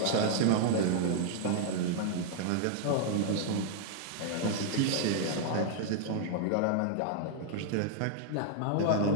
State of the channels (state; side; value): different; both; correlation -0.01